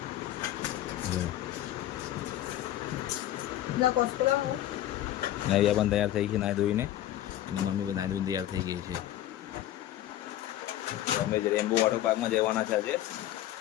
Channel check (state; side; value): quieter; right; 13.2 dB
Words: નવિયા પણ તૈયાર થઈ છે નાહી ધોઈને, અને મમ્મી પણ નાહી ધોઈને તૈયાર થઈ ગઈ છે. તો અમે રેમ્બો વોટર પાર્કમાં જવાના છે આજે.